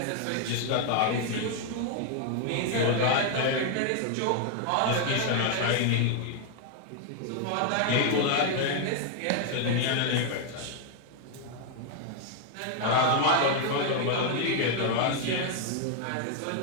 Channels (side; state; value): both; different; correlation 0.00